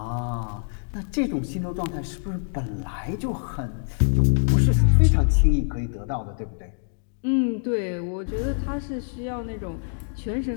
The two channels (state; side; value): silent; right; digital silence